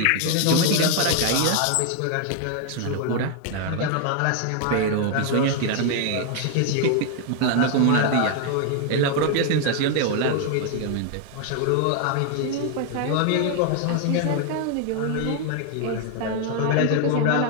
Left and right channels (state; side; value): different; both; correlation 0.01